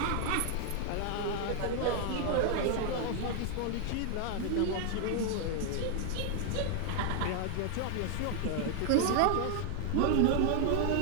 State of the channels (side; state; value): both; different; correlation 0.00